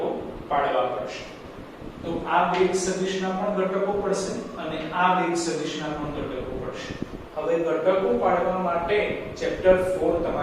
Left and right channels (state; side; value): identical; both; correlation 1.00